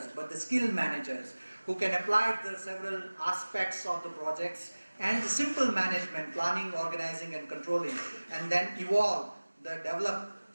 but the skilled managers who can apply the several aspects of the projects and the simple management, planning, organizing and controlling, and then develop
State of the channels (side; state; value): both; inverted; correlation -1.00